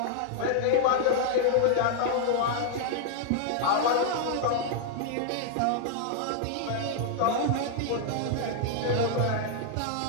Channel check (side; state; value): both; different; correlation -0.01